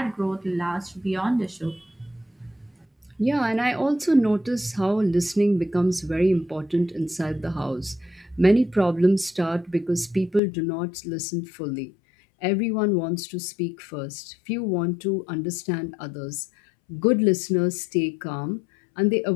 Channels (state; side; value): drops out; right; at 10.4 s